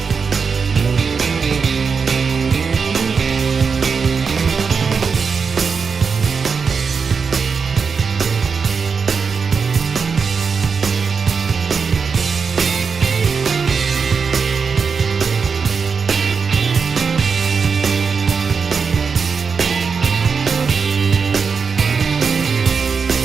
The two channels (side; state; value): left; quieter; 5.6 dB